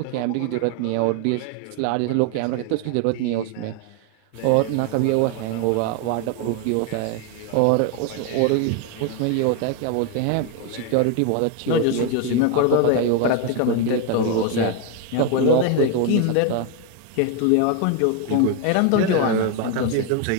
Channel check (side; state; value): both; different; correlation 0.01